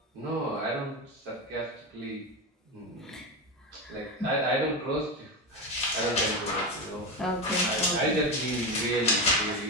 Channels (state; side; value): normal; both; correlation 0.16